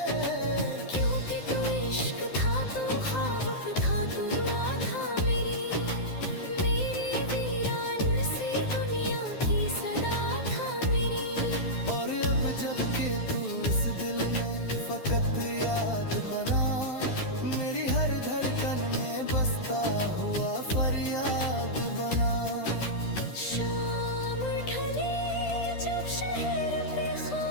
क्योंकि तू इश्क था, तू ख्वाब था, तू दुआ था मेरी, मेरी वीरान सी दुनिया की सदा था मेरी। और अब जब के तू इस दिल में फकत याद बना, मेरी हर धड़कन में बसता हुआ फरियाद बना। शाम ढले जब शहर पे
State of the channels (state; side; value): late; right; 12 ms